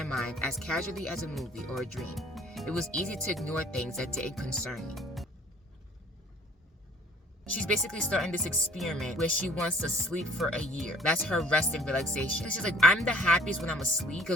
mind as casually as a movie or a dream. It was easy to ignore things that didn't concern me. She's basically starting this experiment where she wants to sleep for a year. That's her rest and relaxation. She's like, I'm the happiest when I'm asleep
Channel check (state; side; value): normal; both; correlation 0.54